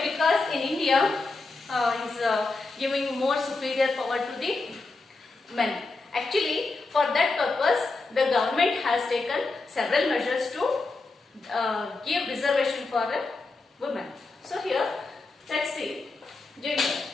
Because in India is giving more superior power to the men. Actually, for that purpose, the government has taken several measures to give reservation for women. So here, let's see gender.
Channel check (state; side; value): quieter; right; 3.6 dB